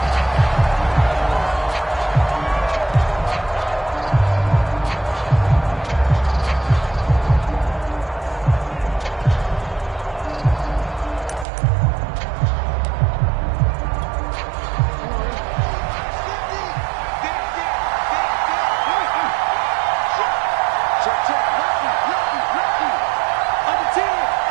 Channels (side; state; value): left; drops out; at 11.5 s